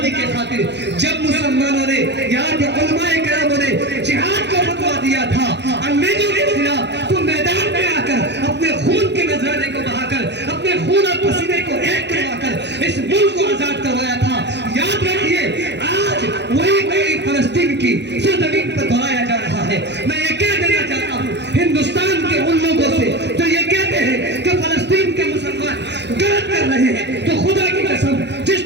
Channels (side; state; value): left; late; 0.50 ms